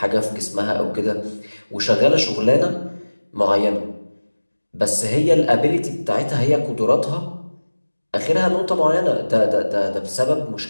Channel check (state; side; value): inverted; both; correlation -1.00